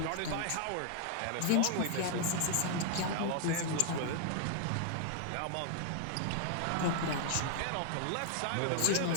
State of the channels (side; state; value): both; different; correlation 0.00